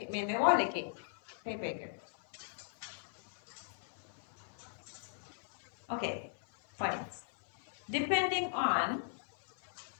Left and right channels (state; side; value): silent; right; 52 dB below the other